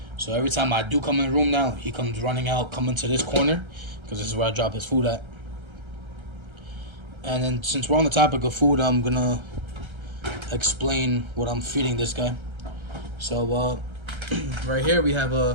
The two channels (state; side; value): late; left; 1.3 ms